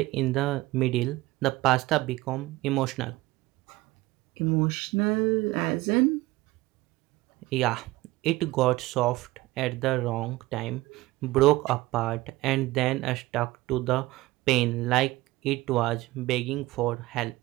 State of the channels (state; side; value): quieter; left; 19.0 dB